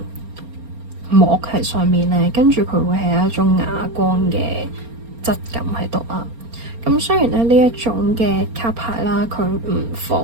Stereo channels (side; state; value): left; late; 4.3 ms